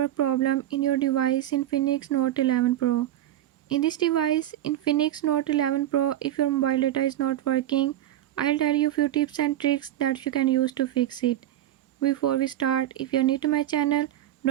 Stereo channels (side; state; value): left; quieter; 12.6 dB